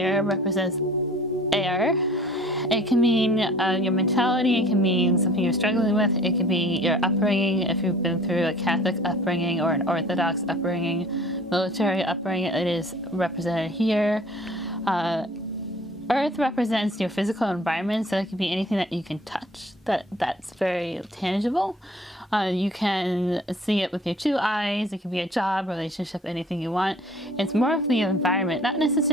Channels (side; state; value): both; normal; correlation 0.50